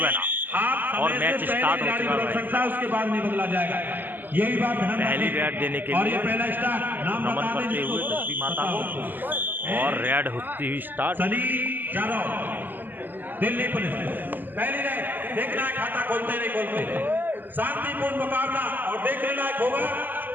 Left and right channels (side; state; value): left; late; 0.088 ms